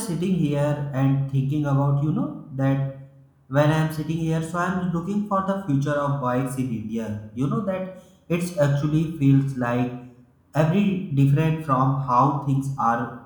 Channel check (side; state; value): both; identical; correlation 1.00